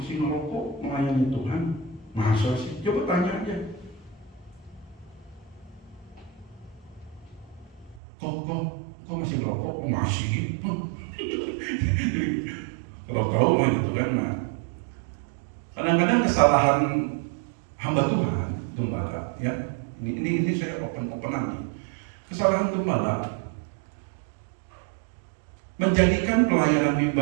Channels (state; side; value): drops out; left; at 8.0 s